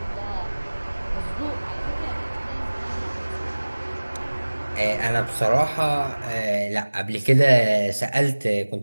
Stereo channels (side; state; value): both; inverted; correlation -1.00